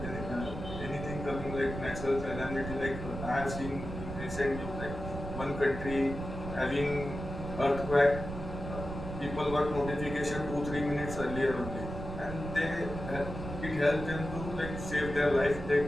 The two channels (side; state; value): right; noise; rumble, 7 dB below the sound